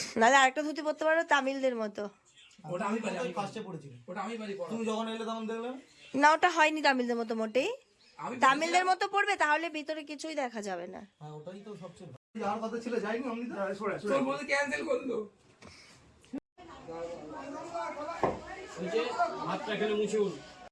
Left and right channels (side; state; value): both; identical; correlation 1.00